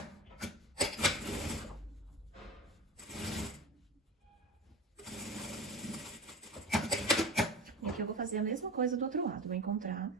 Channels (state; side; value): normal; both; correlation 0.30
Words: E aqui eu vou fazer a mesma coisa do outro lado. Vou encontrar